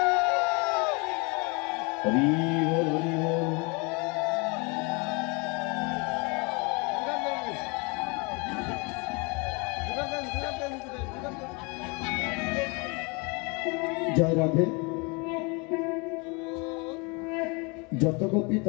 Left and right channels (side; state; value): right; quieter; 30.4 dB